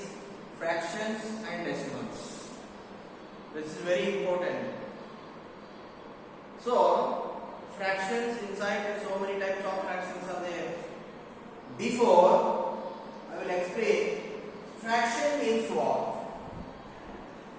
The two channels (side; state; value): both; identical; correlation 1.00